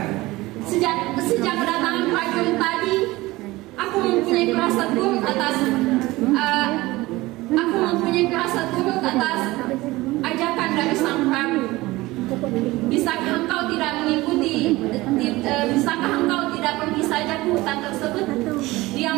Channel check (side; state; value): left; quieter; 19.7 dB